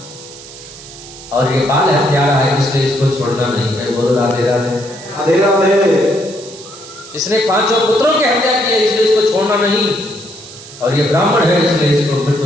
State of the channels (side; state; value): right; noise; hiss, 17 dB below the sound